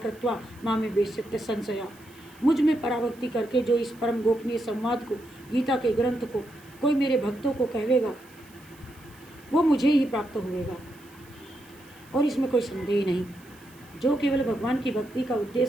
मामे वेश्यत्य संशया। मुझ में पराभक्ति करके जो इस परम गोपनीय संवाद को, गीता के ग्रंथ को कोई मेरे भक्तों को कहेगा वो मुझे ही प्राप्त होगा, और इसमें कोई संदेह नहीं। जो केवल भगवान की भक्ति का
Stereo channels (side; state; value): right; noise; hiss, 26 dB below the sound